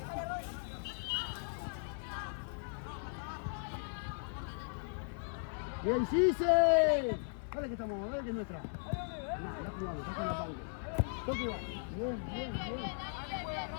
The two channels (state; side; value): silent; right; 53 dB below the other